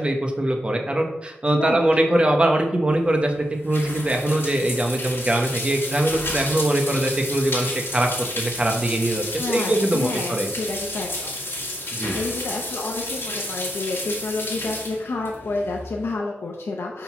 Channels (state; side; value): normal; both; correlation 0.82